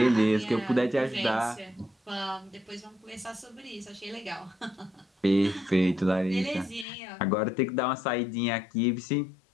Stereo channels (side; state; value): right; drops out; at 6.9 s